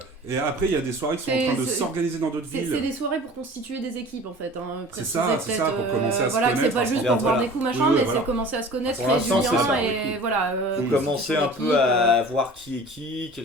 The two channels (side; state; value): both; normal; correlation 0.43